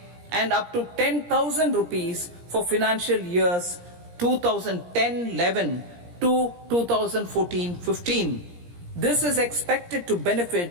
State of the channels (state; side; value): late; left; 17 ms